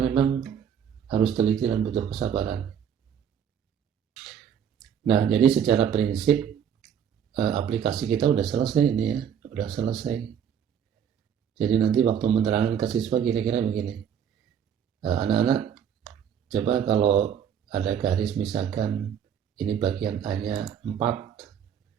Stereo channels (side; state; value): left; quieter; 8.5 dB